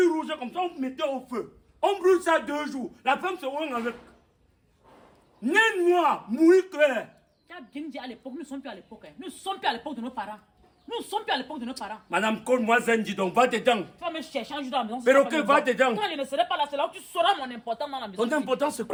rouge comme ça, on mettait au feu. On brûle ça 2 jours. La femme se rend avec. Né noir, mouille clair. Tu as bien dit à l'époque, nous ne sommes plus à l'époque. Hein. Nous ne sommes plus à l'époque de nos parents. Nous ne sommes plus à l'époque de nos parents. Madame, colle-moi Zenji, donc va dedans. Tu vas me chercher un jour dans la maison. Perroquet, va dedans. Quand je ne serai pas là, c'est là où tu sauras mon importance dans la maison. Ton importance, c'est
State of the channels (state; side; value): identical; both; correlation 1.00